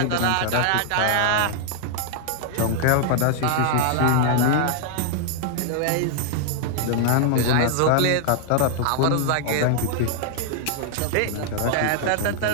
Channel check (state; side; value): different; both; correlation -0.01